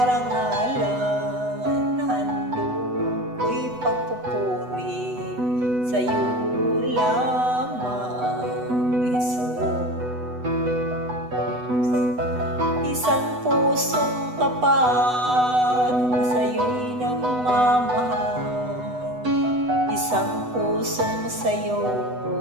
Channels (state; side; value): late; left; 8.0 ms